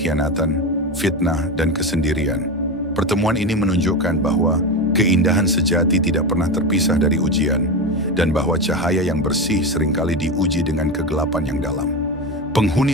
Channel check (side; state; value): both; normal; correlation 0.19